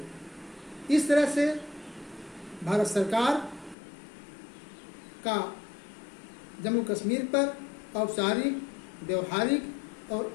इस तरह से भारत सरकार का जम्मू कश्मीर पर औपचारिक, व्यवहारिक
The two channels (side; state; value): right; drops out; at 3.8 s